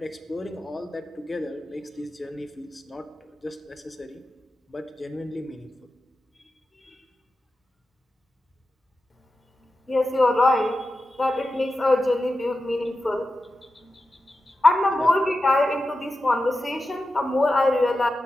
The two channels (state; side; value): normal; both; correlation 0.92